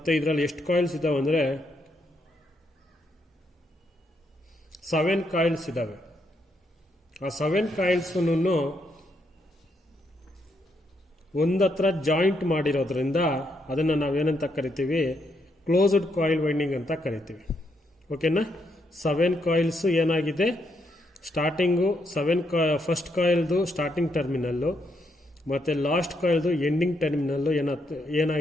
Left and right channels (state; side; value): normal; both; correlation 0.78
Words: ಇದರಲ್ಲಿ ಎಷ್ಟು ಕಾಯಿಲ್ಸ್ ಇದ್ದಾವೆ ಅಂದರೆ 7 ಕಾಯಿಲ್ಸ್ ಇದ್ದಾವೆ. ಆ 7 ಕಾಯಿಲ್ಸೂ ಒಂದತ್ರ ಜಾಯಿಂಟ್ ಮಾಡಿರೋದ್ರಿಂದ ಅದನ್ನು ನಾವೇನಂತ ಕರಿತೀವಿ, ಕ್ಲೋಸ್ಡ್ ಕಾಯಿಲ್ ವೈಂಡಿಂಗ್ ಅಂತ ಕರಿತೀವಿ. ಓಕೆನಾ? 7 ಕಾಯಿಲ್ಸ್ ಏನಾಗಿದೆ, ಸ್ಟಾರ್ಟಿಂಗು ಫಸ್ಟ್ ಕಾಯಿಲ್ದು ಸ್ಟಾರ್ಟಿಂಗ್ ಟರ್ಮಿನಲ್ಲು ಮತ್ತು ಲಾಸ್ಟ್ ಕಾಯಿಲ್ದು ಎಂಡಿಂಗ್ ಟರ್ಮಿನಲ್ಲು